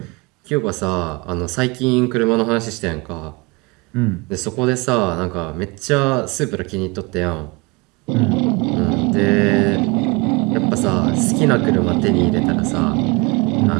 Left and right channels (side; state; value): left; quieter; 26.9 dB